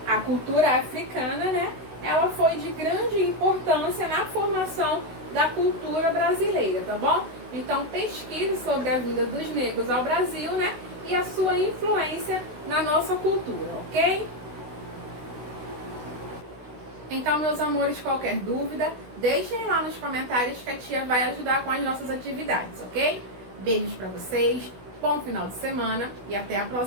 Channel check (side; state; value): left; late; 16 ms